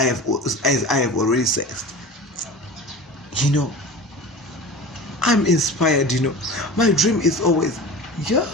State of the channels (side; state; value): both; normal; correlation 0.35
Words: have already said. You know, I'm inspired, you know. My dream is always,